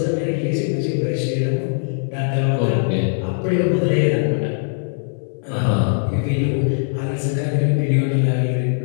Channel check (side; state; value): right; silent; 64 dB below the other